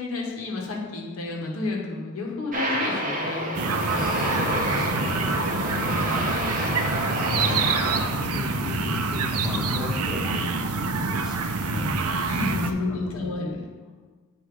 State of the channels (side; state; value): both; normal; correlation 0.29